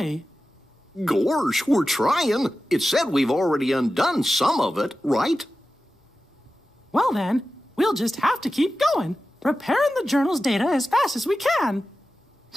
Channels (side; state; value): both; normal; correlation 0.93